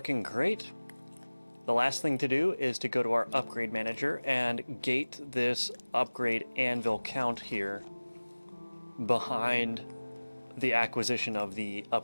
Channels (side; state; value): both; inverted; correlation -1.00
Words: great. The last thing to do is to go to our upgrade manager and gate this upgrade anvil count here behind the acquisition of the